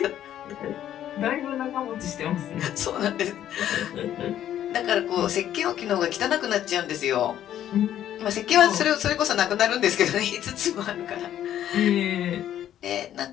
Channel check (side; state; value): right; quieter; 11.3 dB